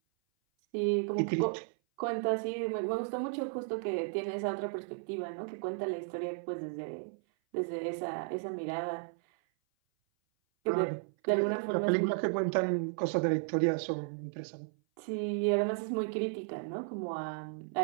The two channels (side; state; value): left; silent; 55 dB below the other